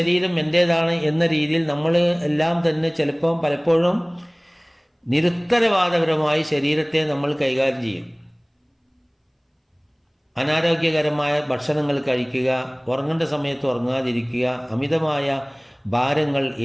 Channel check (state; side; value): identical; both; correlation 1.00